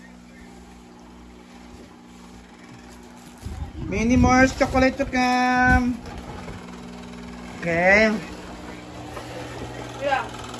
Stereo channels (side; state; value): both; identical; correlation 1.00